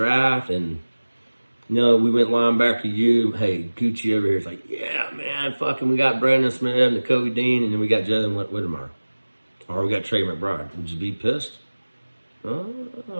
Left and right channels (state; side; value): inverted; both; correlation -1.00